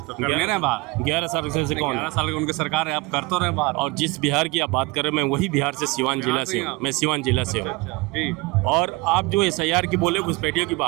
साल से कौन? 11 साल की उनकी सरकार है, आप कर तो रहे बाहर। और जिस बिहार की आप बात कर रहे हैं, मैं वही बिहार से सिवान जिला से हूँ। मैं सिवान जिला से हूँ। और आप जो एसआईआर की बोले घुसपैठियों की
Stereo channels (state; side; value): quieter; left; 23.4 dB